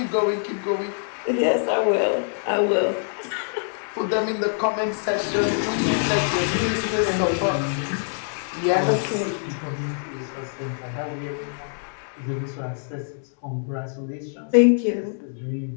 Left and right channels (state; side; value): silent; right; digital silence